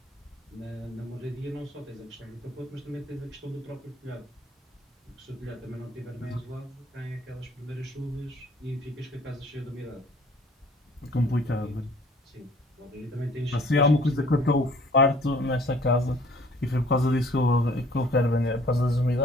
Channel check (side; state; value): both; normal; correlation 0.55